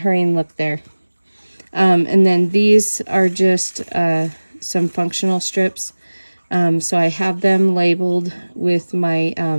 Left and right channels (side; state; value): both; inverted; correlation -1.00